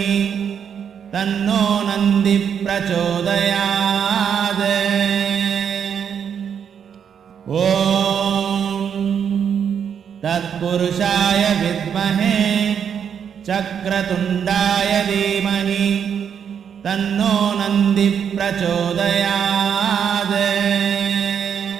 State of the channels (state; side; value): quieter; left; 7.8 dB